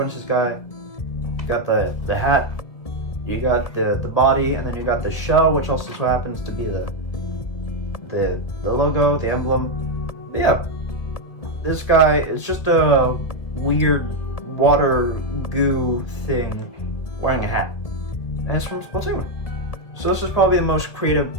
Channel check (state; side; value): late; right; 1.8 ms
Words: to this guy, you got the hat, you got the body, and then you got the shell, which also so happens to be the logo, the emblem. But yeah, this guy is just a weird water goo thing wearing a hat, and it's from Splatoon. So this is probably the most creative